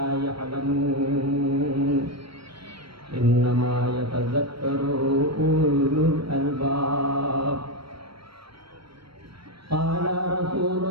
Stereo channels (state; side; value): late; left; 0.75 ms